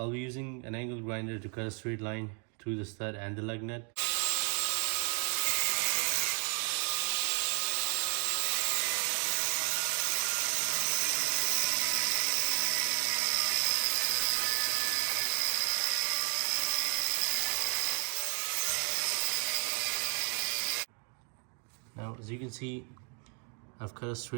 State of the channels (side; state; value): left; quieter; 39.6 dB